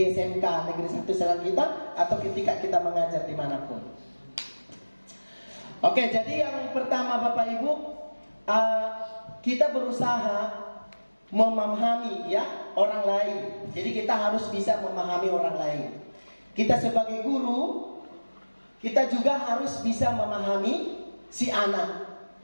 SMK Negeri 1 Selang kita atau ketika kita mengajar dimanapun. Oke, jadi yang pertama Bapak Ibu, kita berusaha memahami ya orang lain. Jadi kita harus bisa memahami orang lain. kita sebagai guru, kita juga harus bisa memahami si anak.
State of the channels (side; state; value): both; inverted; correlation -1.00